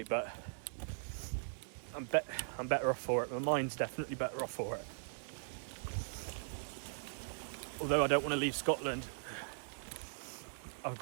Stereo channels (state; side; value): silent; left; digital silence